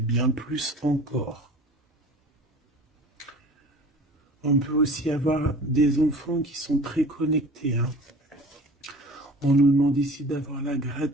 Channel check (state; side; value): normal; both; correlation 0.42